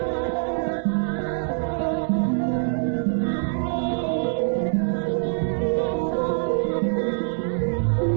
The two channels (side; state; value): left; silent; digital silence